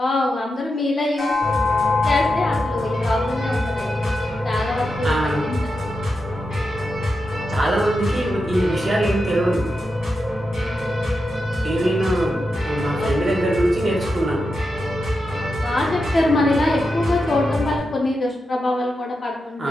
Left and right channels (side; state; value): both; normal; correlation 0.88